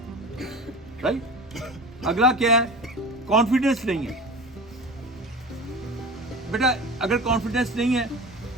राइट, अगला क्या है? कॉन्फिडेंस नहीं है। बेटा अगर कॉन्फिडेंस नहीं है,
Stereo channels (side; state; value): both; normal; correlation 0.34